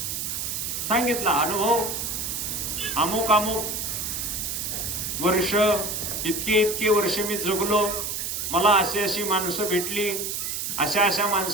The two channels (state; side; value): noise; right; hiss, 3 dB below the sound